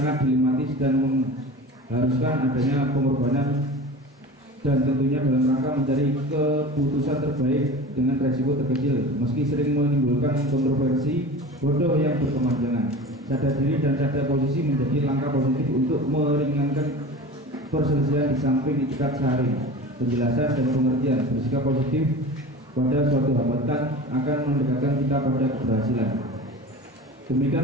dilematis dan mengharuskan adanya pengorbanan dan tentunya dalam rangka mencari keputusan terbaik dengan resiko terkecil, meski sering menimbulkan kontroversi bodoh yang berkepanjangan. Sadar diri dan sadar posisi menjadi langkah positif untuk meringankan perselisihan di samping itikat sehari, penjelasan dan pengertian. Bersikap positif pada suatu hambatan akan mendekatkan kita pada keberhasilan. Demikian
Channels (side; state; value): both; normal; correlation 0.35